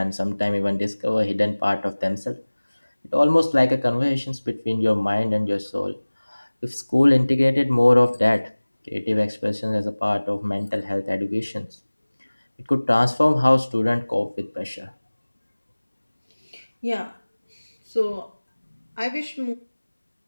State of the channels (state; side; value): inverted; both; correlation -1.00